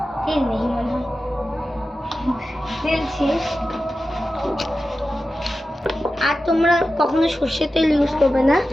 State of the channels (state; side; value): normal; both; correlation 0.93